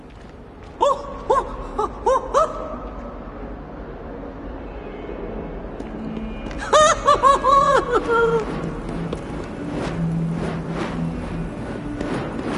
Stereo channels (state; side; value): identical; both; correlation 1.00